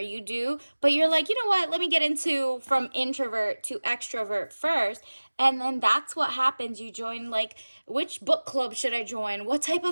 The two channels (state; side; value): inverted; both; correlation -1.00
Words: do, but you're like, you know what, let me get into from introvert to extrovert first. And then that's what happens. You join, like, which book club should I join? What type